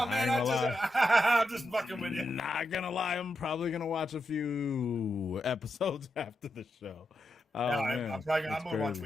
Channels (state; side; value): normal; both; correlation 0.86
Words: man, I'm just fucking with you. Not gonna lie, I'm probably gonna watch a few episodes after the show. I'm gonna watch